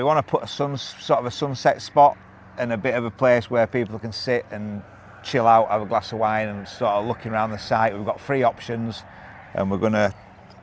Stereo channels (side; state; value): both; identical; correlation 1.00